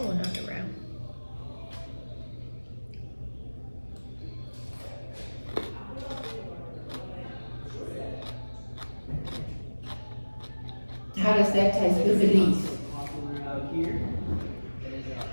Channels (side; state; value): both; inverted; correlation -1.00